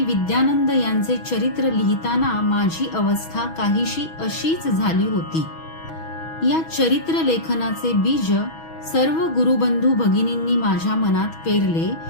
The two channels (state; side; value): late; right; 6.2 ms